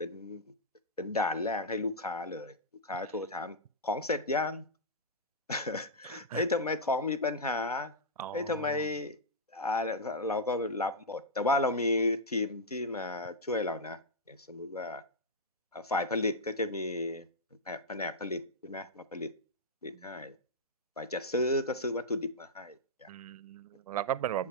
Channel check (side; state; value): both; normal; correlation -0.07